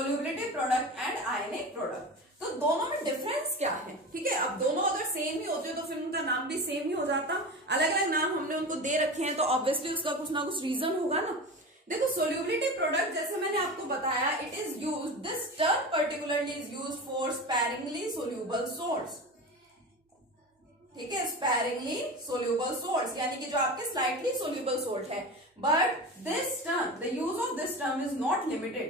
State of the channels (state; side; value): normal; both; correlation 0.29